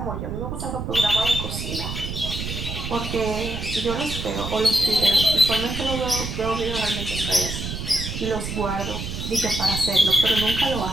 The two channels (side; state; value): right; noise; rumble, 6 dB below the sound